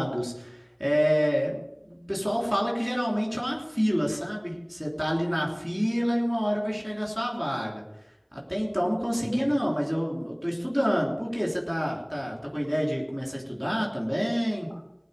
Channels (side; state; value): both; identical; correlation 1.00